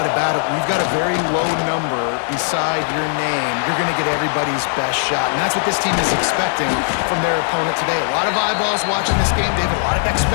about it. We've got a very low number beside your name. You're going to get everybody's best shot. And that's what this team is expecting from their opponent today. A lot of eyeballs watching this game, David. A lot of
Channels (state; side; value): silent; right; digital silence